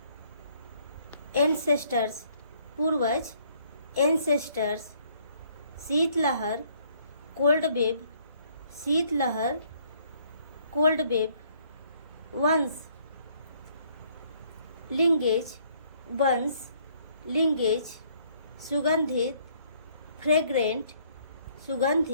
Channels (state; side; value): inverted; both; correlation -0.64